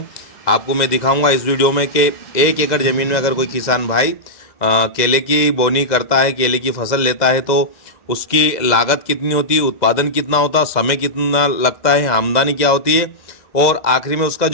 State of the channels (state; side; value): late; right; 2.0 ms